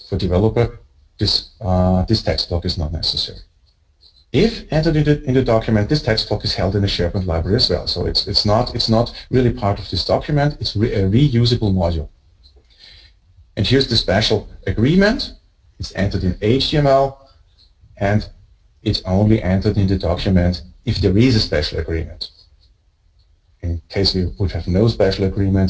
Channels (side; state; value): both; identical; correlation 1.00